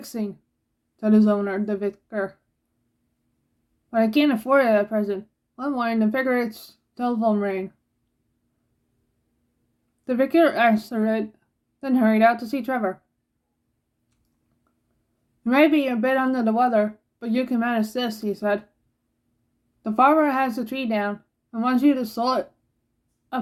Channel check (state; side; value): identical; both; correlation 1.00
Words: said his owner, the vicar. "But I can't afford it at present." One morning, the vicar's telephone rang. The vicar answered it, then hurried out to see Trevor. "You may be a bit under the weather, but you can manage this," he said. "The farmer has the tree down and wants you to saw it